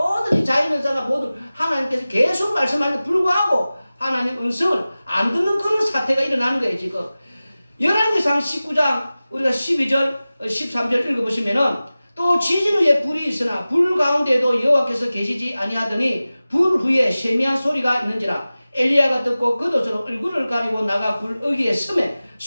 이 자연현상과 모두 하나님께서 계속 말씀하는데 불구하고 하나님 음성을 안 듣는 그런 사태가 일어나는 거예요 지금. 열왕기상 19장 우리가 12절 13절 읽어보시면은 또 지진 후에 불이 있으나 불 가운데에도 여호와께서 계시지 아니하더니 불 후에 세미한 소리가 있는지라. 엘리야가 듣고 겉옷으로 얼굴을 가리고 나가 불 어귀에 서매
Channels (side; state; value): both; inverted; correlation -0.97